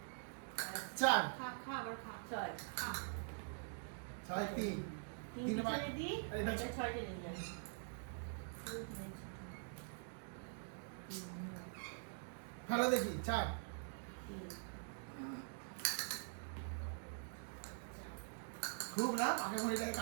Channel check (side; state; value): left; silent; digital silence